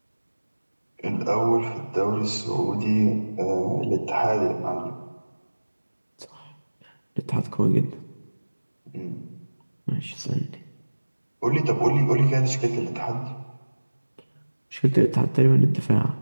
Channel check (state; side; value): inverted; both; correlation -1.00